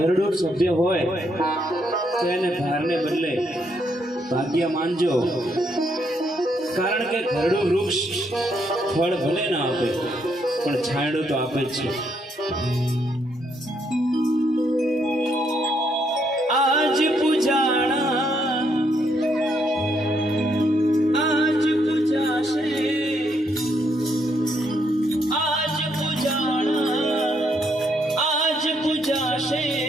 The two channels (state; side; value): normal; both; correlation 0.74